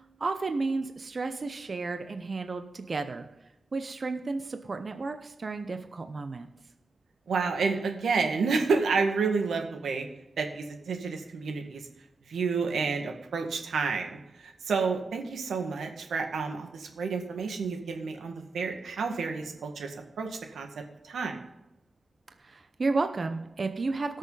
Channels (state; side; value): quieter; left; 4.1 dB